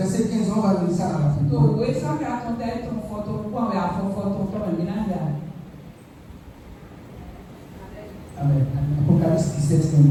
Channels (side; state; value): both; identical; correlation 1.00